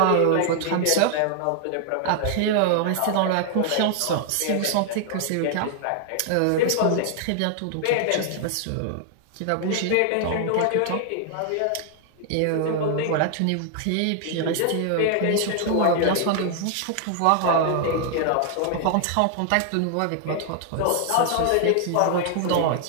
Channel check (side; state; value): both; different; correlation 0.00